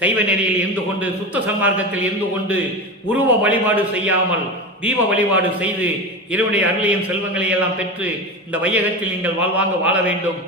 நெறியில் இருந்து கொண்டு சுத்த சன்மார்க்கத்தில் இருந்து கொண்டு உருவ வழிபாடு செய்யாமல் தீப வழிபாடு செய்து இறைவனுடைய அருளையும் செல்வங்களை எல்லாம் பெற்று இந்த வையகத்தில் நீங்கள் வாழ்வாங்க வாழ வேண்டும்,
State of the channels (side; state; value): both; normal; correlation 0.23